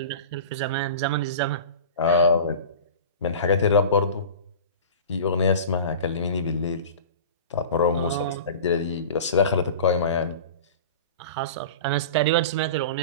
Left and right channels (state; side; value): inverted; both; correlation -0.35